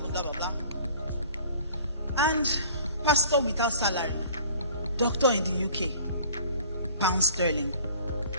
blah, blah, blah. And pastor without salary, doctor in the UK, pound sterling.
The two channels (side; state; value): both; inverted; correlation -0.49